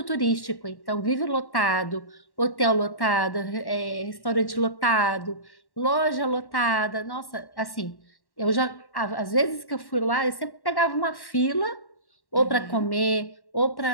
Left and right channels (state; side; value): late; right; 1.1 ms